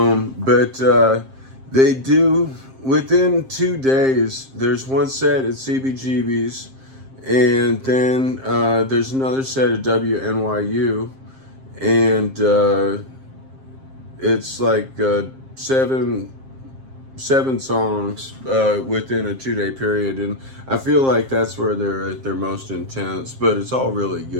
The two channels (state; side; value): late; left; 7.5 ms